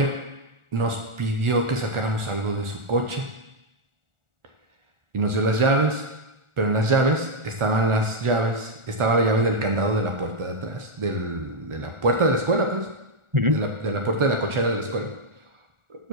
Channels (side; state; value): left; late; 1.4 ms